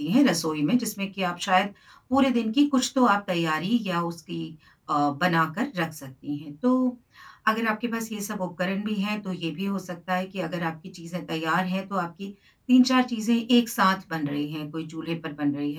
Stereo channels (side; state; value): both; identical; correlation 1.00